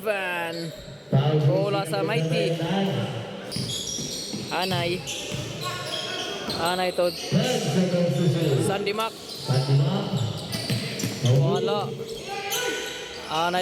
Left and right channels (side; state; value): both; identical; correlation 1.00